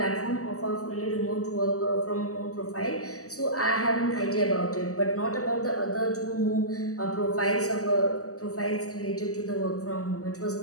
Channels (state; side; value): late; right; 0.66 ms